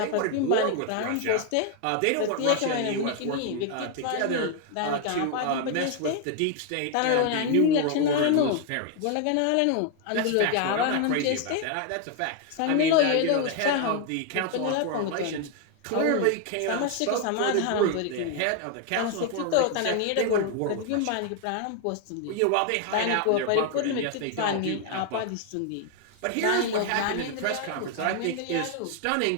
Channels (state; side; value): different; both; correlation 0.00